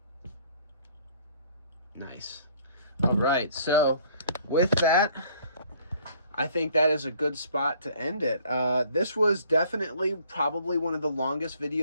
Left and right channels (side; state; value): both; inverted; correlation -0.58